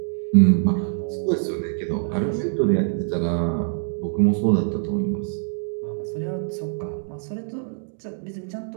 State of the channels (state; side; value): silent; left; 62 dB below the other